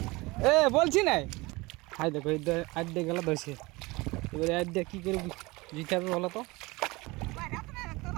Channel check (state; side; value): quieter; left; 23.0 dB